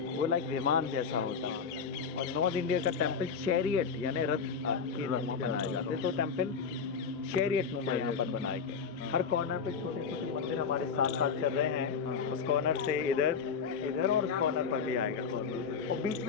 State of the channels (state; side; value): quieter; right; 6.0 dB